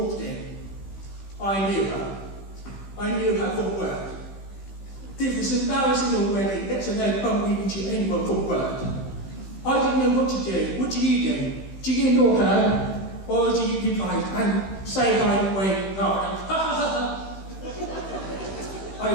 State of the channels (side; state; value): right; late; 15 ms